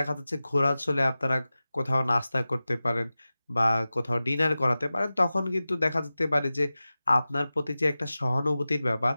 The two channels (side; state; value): both; inverted; correlation -0.96